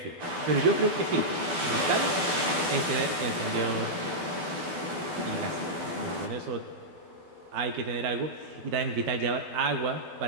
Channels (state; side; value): late; left; 12 ms